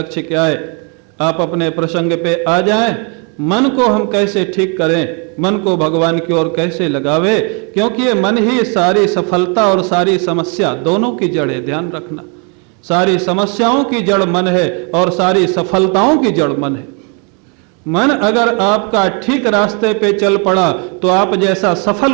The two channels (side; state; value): left; quieter; 36.0 dB